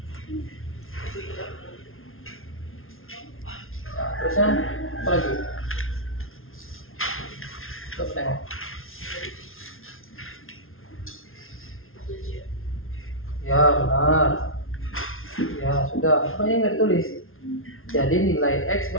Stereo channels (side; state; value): right; late; 0.61 ms